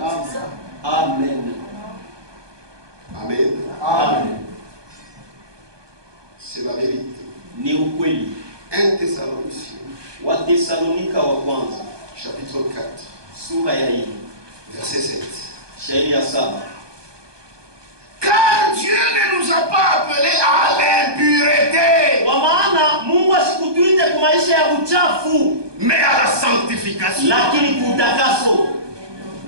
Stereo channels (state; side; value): late; left; 1.2 ms